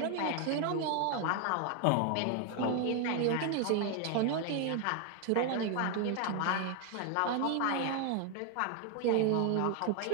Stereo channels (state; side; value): different; both; correlation 0.00